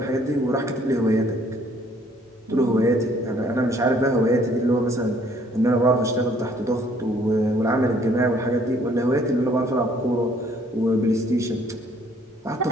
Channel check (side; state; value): both; normal; correlation 0.60